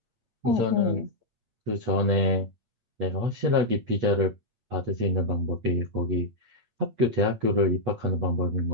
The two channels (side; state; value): left; late; 8.1 ms